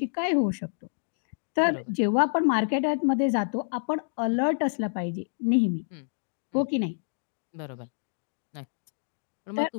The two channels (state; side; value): silent; right; digital silence